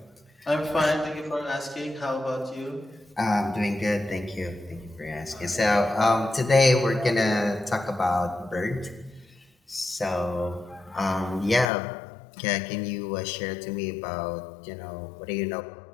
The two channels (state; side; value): drops out; right; at 11.7 s